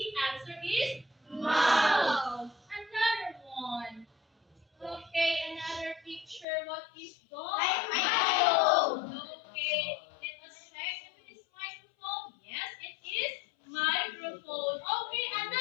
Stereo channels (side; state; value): right; drops out; at 6.5 s